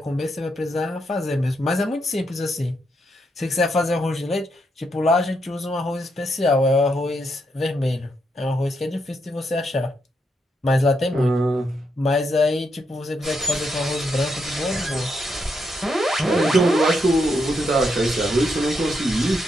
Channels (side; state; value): both; normal; correlation 0.80